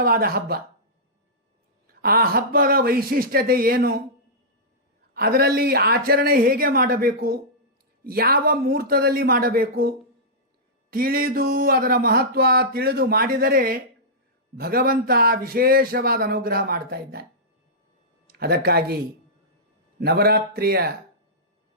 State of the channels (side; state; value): both; normal; correlation -0.13